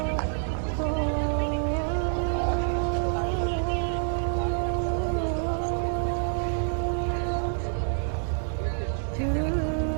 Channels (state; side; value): silent; left; 60 dB below the other